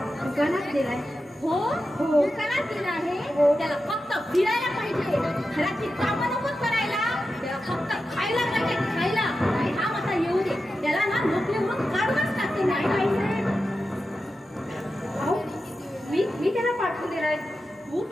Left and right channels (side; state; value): both; normal; correlation 0.91